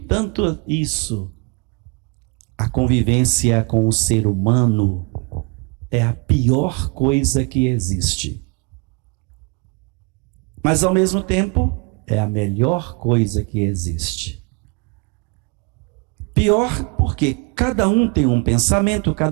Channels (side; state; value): left; quieter; 30.4 dB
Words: isso. A convivência com o ser humano é a pior coisa que existe. Mas ao mesmo tempo, é a melhor coisa que existe. Pior porque cada um tem um pensamento,